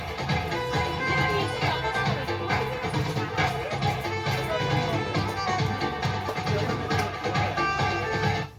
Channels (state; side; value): identical; both; correlation 1.00